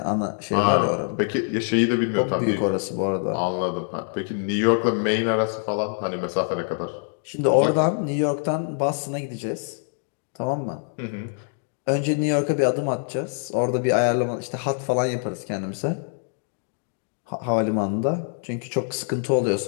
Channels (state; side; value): silent; right; 62 dB below the other